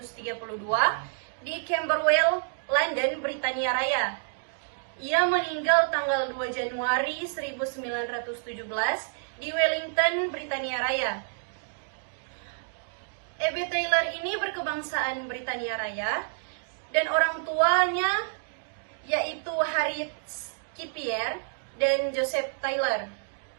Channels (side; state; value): left; silent; digital silence